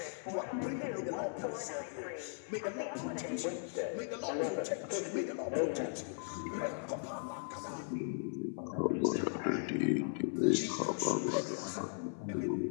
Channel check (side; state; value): right; silent; 53 dB below the other